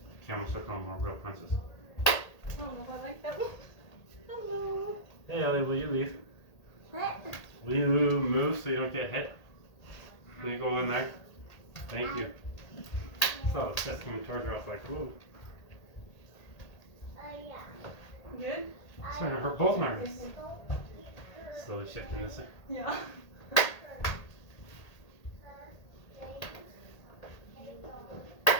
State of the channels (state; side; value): late; right; 1.8 ms